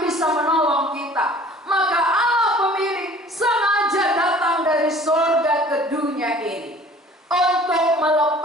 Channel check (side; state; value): both; normal; correlation 0.49